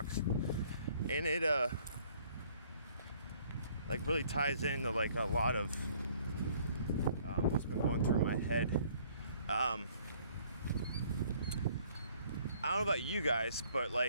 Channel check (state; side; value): inverted; both; correlation -0.60